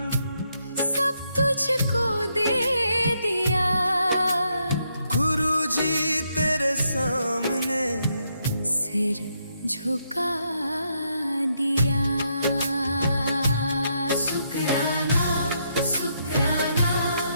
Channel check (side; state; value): both; inverted; correlation -0.77